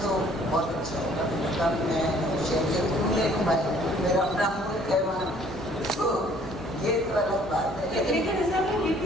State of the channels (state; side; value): normal; both; correlation 0.58